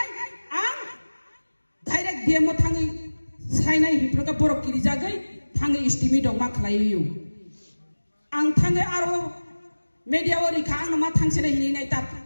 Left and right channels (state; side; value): inverted; both; correlation -1.00